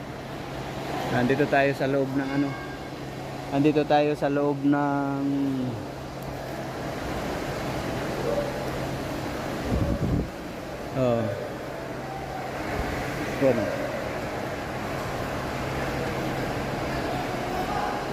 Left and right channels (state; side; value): identical; both; correlation 1.00